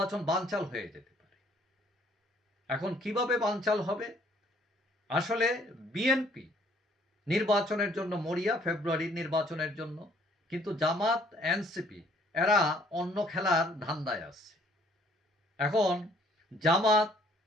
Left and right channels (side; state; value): both; normal; correlation 0.61